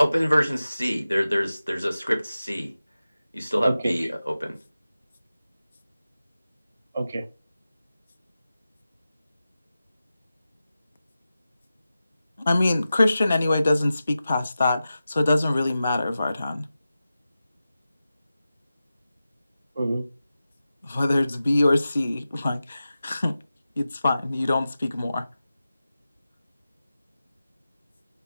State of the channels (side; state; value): both; inverted; correlation -0.93